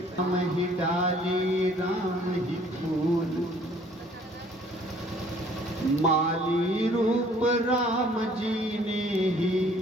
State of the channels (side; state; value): both; normal; correlation 0.57